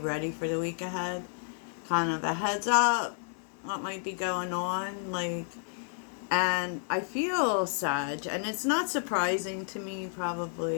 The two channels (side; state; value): right; silent; digital silence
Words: for the week ahead. Kind of a heads up what might be going on, and I feel Sag, and it's not surprising to me,